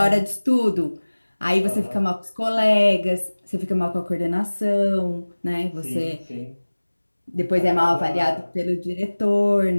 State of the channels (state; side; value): inverted; both; correlation -1.00